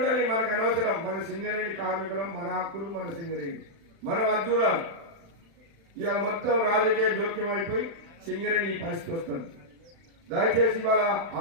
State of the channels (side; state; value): left; late; 35 ms